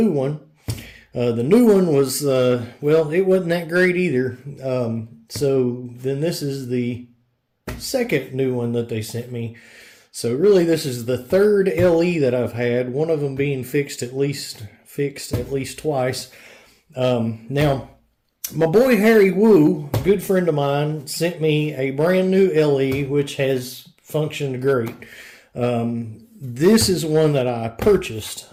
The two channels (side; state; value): both; identical; correlation 1.00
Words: one. The new one was well, it wasn't that great either. So then this is the second new one that they sent me. So really, this is the third LE that I've had. One of them being fixed at least twice. Now, my boy Harry Wu, a good friend of mine, sent me a brand new LE, which has functioned great. This is one that I purchased